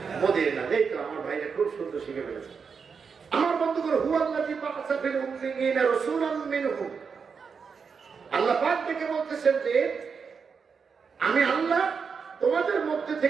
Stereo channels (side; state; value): left; quieter; 5.8 dB